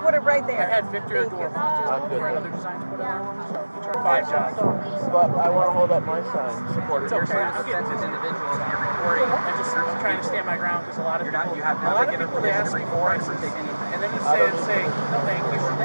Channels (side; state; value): both; inverted; correlation -1.00